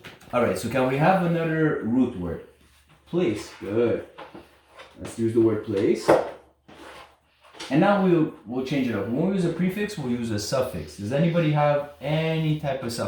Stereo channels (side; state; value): both; identical; correlation 1.00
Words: All right, so can we have another root word? Place. Good. Let's use the word place. And now we'll change it up. When we use a prefix, we'll use a suffix. Does anybody have any type of